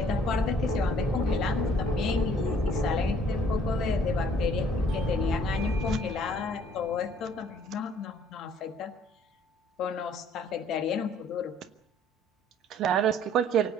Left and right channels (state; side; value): normal; both; correlation 0.59